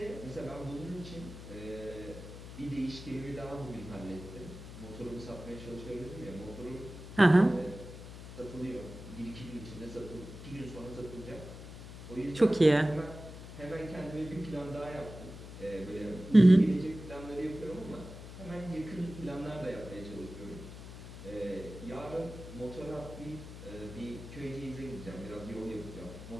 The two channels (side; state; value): left; noise; hum, 13 dB below the sound